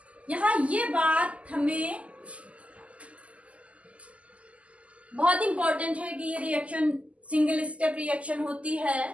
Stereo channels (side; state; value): left; late; 0.065 ms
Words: यहां ये बात हमें बहुत इंपॉर्टेंट है कि ये रिएक्शन सिंगल स्टेप रिएक्शन होती